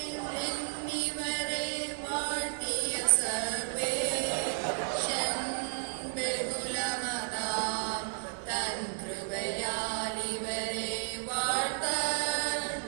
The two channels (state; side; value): silent; left; digital silence